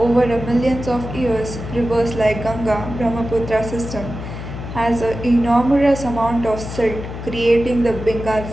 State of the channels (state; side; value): noise; left; hum, 8 dB below the sound